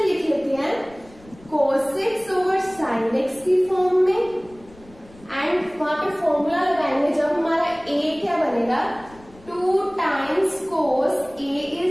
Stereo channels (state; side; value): noise; left; rumble, 24 dB below the sound